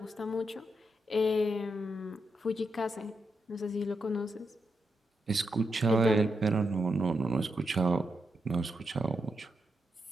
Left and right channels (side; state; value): both; normal; correlation 0.84